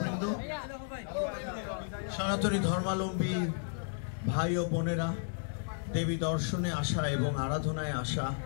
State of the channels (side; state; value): right; silent; digital silence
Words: সনাতনী ধর্মাবলম্বী ভাই ও বোনেরা, দেবী দর্শনে আসা এবং আরাধনায় আসা,